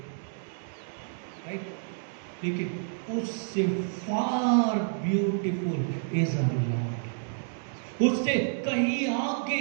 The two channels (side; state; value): left; silent; digital silence